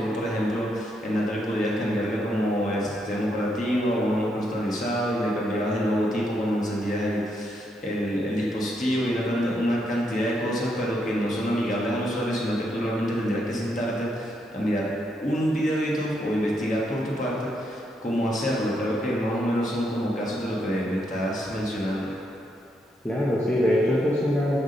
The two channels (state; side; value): normal; both; correlation 0.78